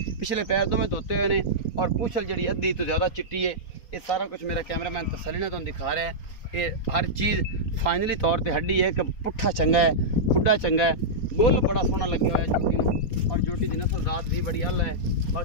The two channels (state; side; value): late; right; 4.3 ms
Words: पिछले पैर तो मैं धोते हुए ने और पूछल जड़ी अद्धी तो ज़्यादा चिट्टी है। ये सारा कुछ मेरा कैमरामैन तसल्ली ने तो दिखा रहा है। ये हर चीज़ फाइनली तौर पर हड्डी है कि पुट्ठा चंगा है, खुड्डा चंगा है, गोल बड़ा सोहना लगे हुआ है जोटी में और जोटी की नस्ल जात भी बड़ी अल है।